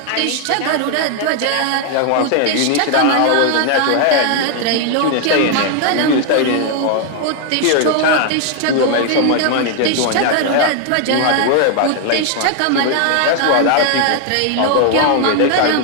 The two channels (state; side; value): different; both; correlation 0.00